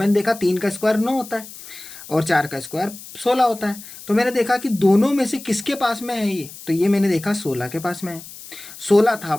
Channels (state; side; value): noise; left; hiss, 15 dB below the sound